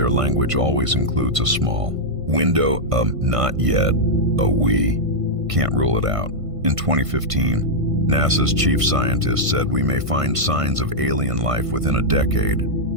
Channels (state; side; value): late; left; 1.5 ms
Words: language always includes a small window of not yet, a we can't rule it out. In 2015, NASA's chief scientist said we may find signs of alien life within a decade.